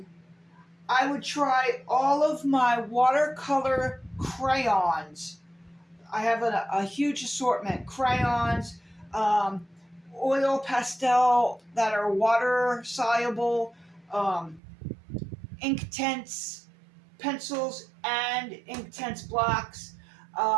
I would try all of my watercolor crayons. I have a huge assortment: crayons, um, oil pastel that are water soluble, um, Inktense pencils and Inktense blocks.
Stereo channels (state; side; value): drops out; left; at 14.6 s